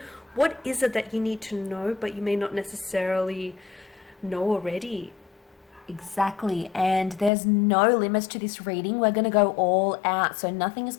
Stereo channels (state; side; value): drops out; right; at 7.3 s